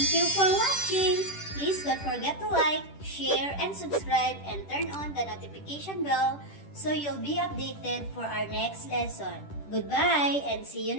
Thank you for watching! Please don't forget to like, share, and subscribe and turn on the notification bell so you'll be updated for our next lesson. Goodbye and see you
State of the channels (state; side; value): late; right; 10 ms